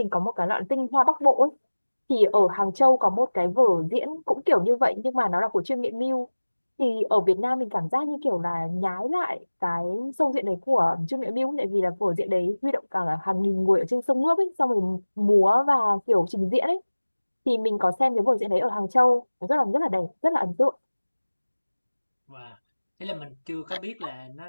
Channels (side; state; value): both; inverted; correlation -1.00